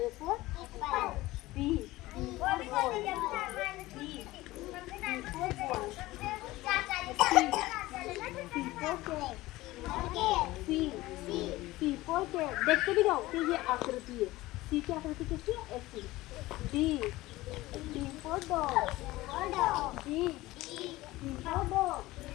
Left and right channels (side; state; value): right; quieter; 18.4 dB